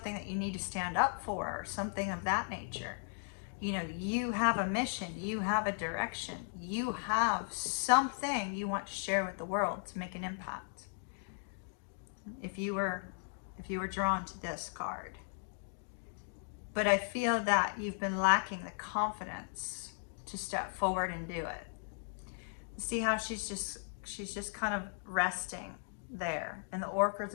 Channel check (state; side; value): silent; right; digital silence